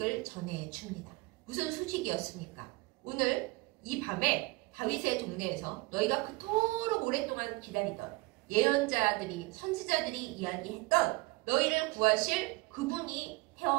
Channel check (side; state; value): left; quieter; 23.4 dB